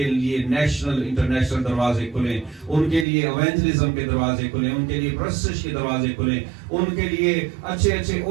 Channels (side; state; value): left; drops out; at 3.1 s